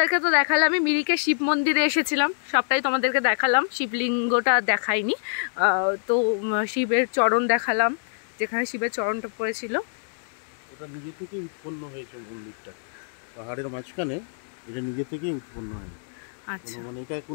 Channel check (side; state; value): right; silent; 61 dB below the other